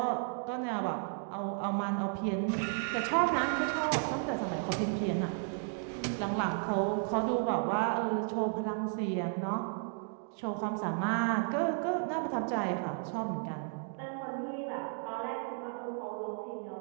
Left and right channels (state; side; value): silent; left; 55 dB below the other